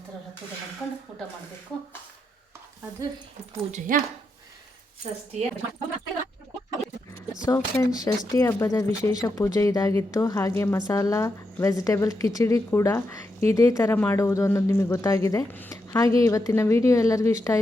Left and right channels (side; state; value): both; normal; correlation 0.84